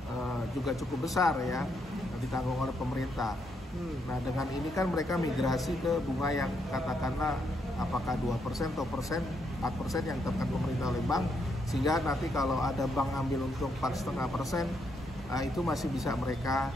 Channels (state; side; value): normal; both; correlation 0.77